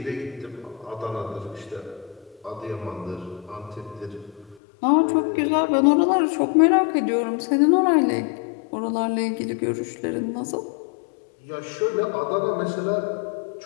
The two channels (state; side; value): drops out; right; at 4.5 s